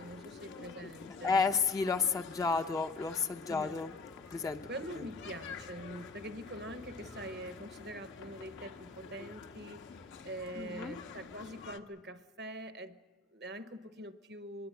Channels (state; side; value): quieter; right; 3.8 dB